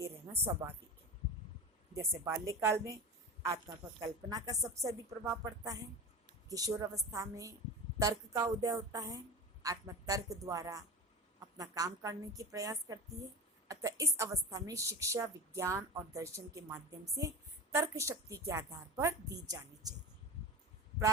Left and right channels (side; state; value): both; normal; correlation 0.29